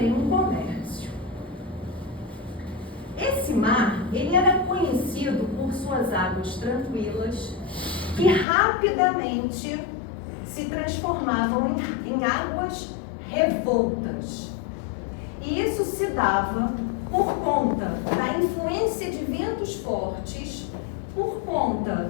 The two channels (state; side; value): drops out; right; at 8.5 s